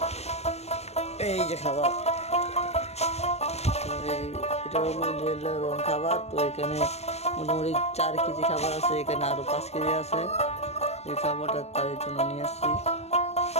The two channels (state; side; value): late; right; 0.31 ms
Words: এই যে খাবার। এটা হলো লেয়ার ওয়ান খাবার। তো এখানে মোটামুটি 4 কেজি খাবার আছে, এখানে আরো 5 কেজি আছে। এই খাবারটা তাদের জন্য নিয়ে আসছি।